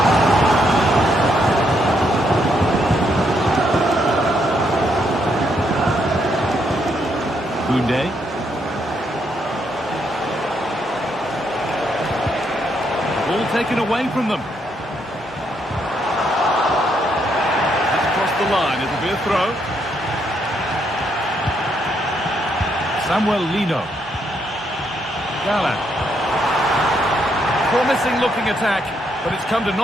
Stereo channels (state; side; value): normal; both; correlation 0.75